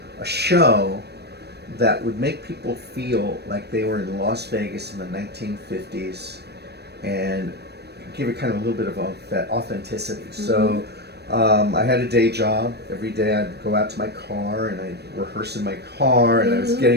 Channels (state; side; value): late; left; 0.47 ms